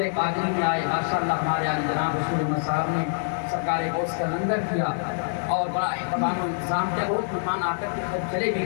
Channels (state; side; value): silent; right; digital silence